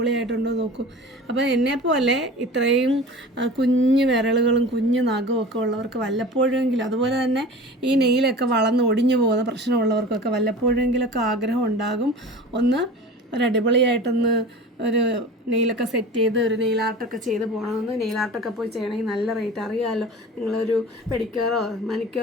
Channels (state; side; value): normal; both; correlation 0.37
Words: നോക്കൂ. അപ്പോൾ എന്നെപ്പോലെ ഇത്രയും കുഞ്ഞു വിരലുകളും കുഞ്ഞു നഖവും ഒക്കെ ഉള്ളവർക്ക് വല്ലപ്പോഴെങ്കിലും, അതുപോലെ തന്നെ ഈ നെയിലൊക്കെ വളർന്ന് ഒടിഞ്ഞു പോകുന്ന പ്രശ്നമുള്ളവർക്കൊക്കെ വല്ലപ്പോഴെങ്കിലൊക്കെ ആഗ്രഹം ഉണ്ടാകും ഒന്ന് ഒരടിപൊളിയായിട്ടൊന്ന് ഒരു നെയിലൊക്കെ സെറ്റ് ചെയ്ത് ഒരു നെയിൽ ആർട്ടൊക്കെ ചെയ്ത് പോകണമെന്ന്. നെയിൽ ആർട്ടൊക്കെ പോയി ചെയ്യണമെങ്കിൽ നല്ല റേറ്റ് അറിയാമല്ലോ. നിങ്ങളൊരു പെഡിക്യൂറോ